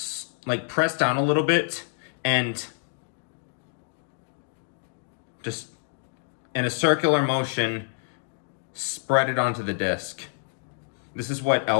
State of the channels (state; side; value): silent; right; digital silence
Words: like press down a little bit and just in a circular motion, spread it onto the disc. This is what